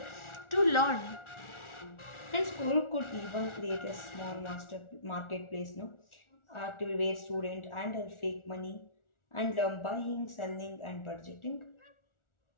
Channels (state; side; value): late; right; 1.4 ms